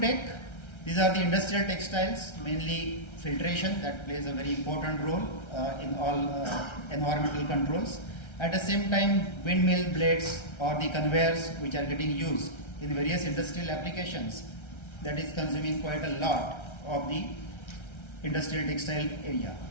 these are the industrial textiles, mainly filtration that plays a very important role in all environmental controls. At the same time, windmill blades or the conveyors which are getting used in various industrial applications, that is consuming quite a lot of the industrial textile area.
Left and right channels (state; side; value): late; right; 1.3 ms